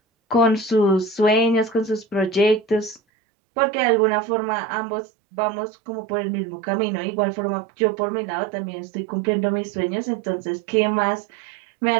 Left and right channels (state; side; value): drops out; left; at 3.0 s